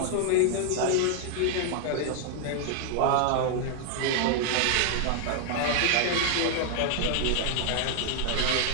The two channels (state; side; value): different; both; correlation 0.00